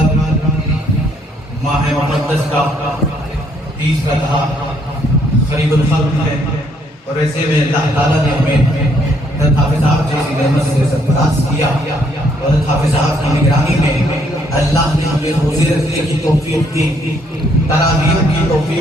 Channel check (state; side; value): normal; both; correlation 0.68